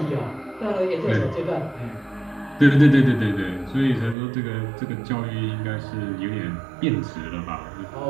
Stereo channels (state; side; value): drops out; left; at 4.2 s